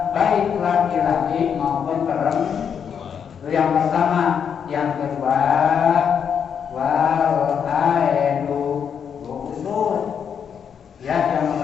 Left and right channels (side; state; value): right; quieter; 7.5 dB